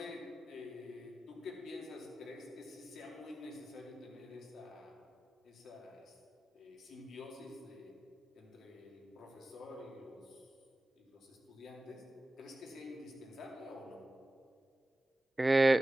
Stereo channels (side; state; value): both; normal; correlation 0.96